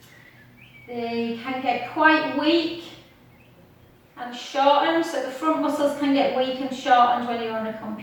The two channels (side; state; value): both; identical; correlation 1.00